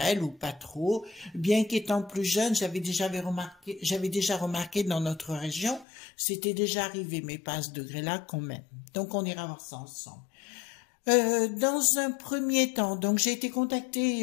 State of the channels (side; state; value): right; drops out; at 5.9 s